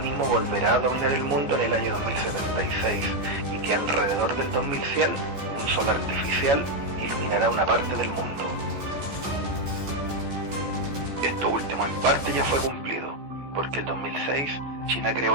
volverá a dominar el mundo en el año 2076 y que alrededor del 2100 un sol artificial iluminará una parte del mundo. Esto último en parte ya fue cumplido, porque el 2006 China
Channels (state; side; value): late; left; 14 ms